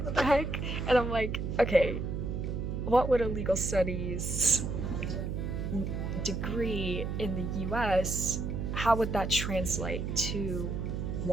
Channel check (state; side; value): noise; right; hum, 3 dB below the sound